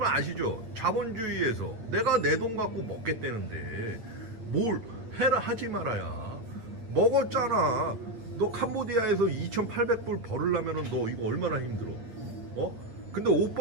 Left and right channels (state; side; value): late; left; 9.0 ms